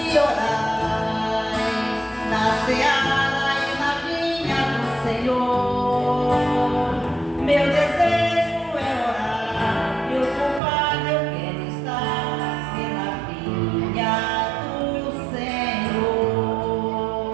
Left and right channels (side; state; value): left; drops out; at 10.6 s